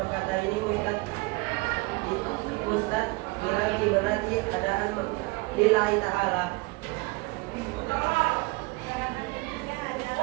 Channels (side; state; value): left; quieter; 25.0 dB